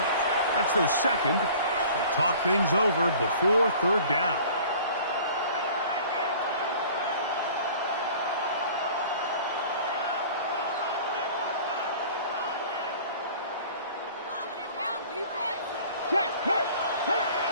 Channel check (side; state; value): both; inverted; correlation -0.47